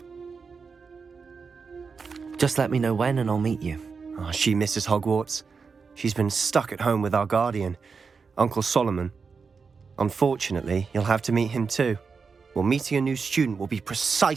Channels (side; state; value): left; quieter; 5.2 dB